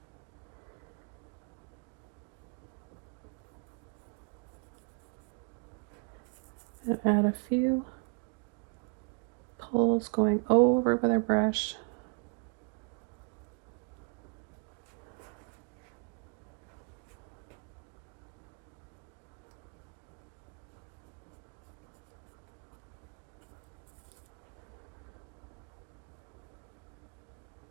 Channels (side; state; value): left; quieter; 38.8 dB